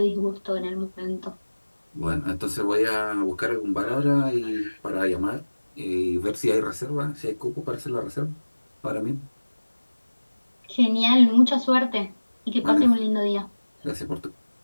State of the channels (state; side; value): inverted; both; correlation -1.00